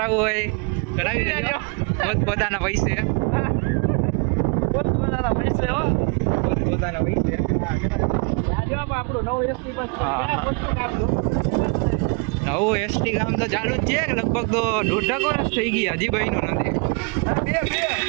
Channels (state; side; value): quieter; left; 32.5 dB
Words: હોય કરાવી લેજો પોતપોતાના પૈસે. પોતપોતાના પૈસે હો. પોતપોતાના પૈસે. આપણું નવું એસટી બસ હા. નવું એસટી કામ તો ચાલુ જ છે લગભગ તો 1.5 વર્ષ થઈ ગયા હજી બન્યું નથી.